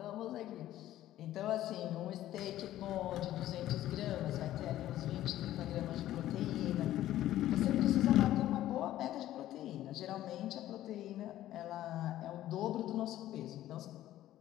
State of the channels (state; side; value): quieter; right; 13.6 dB